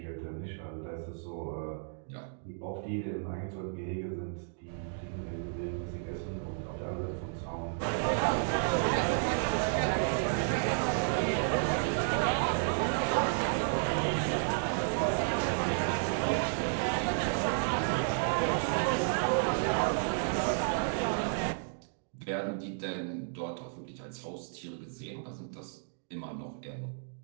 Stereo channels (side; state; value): left; silent; digital silence